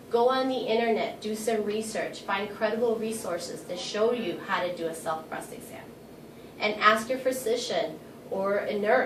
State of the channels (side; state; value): both; identical; correlation 1.00